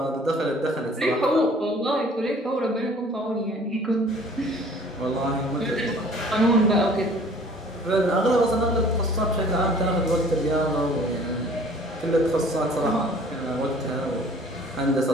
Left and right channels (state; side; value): normal; both; correlation 0.51